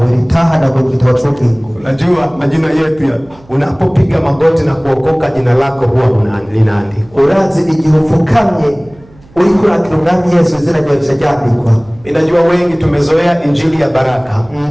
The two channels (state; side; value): noise; right; hum, 26 dB below the sound